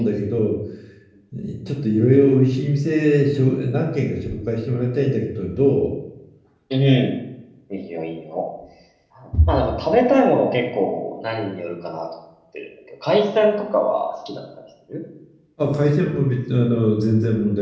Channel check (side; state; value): both; identical; correlation 1.00